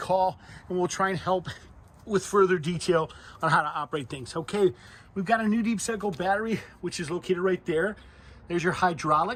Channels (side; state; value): both; identical; correlation 1.00